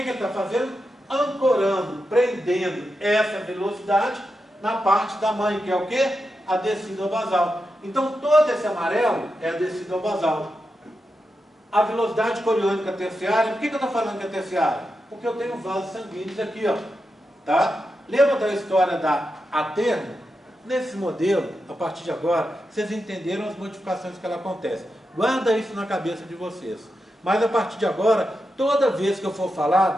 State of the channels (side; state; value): both; normal; correlation 0.88